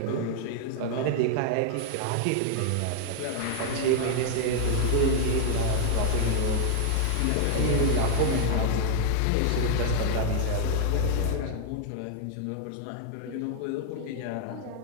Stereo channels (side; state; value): both; different; correlation 0.00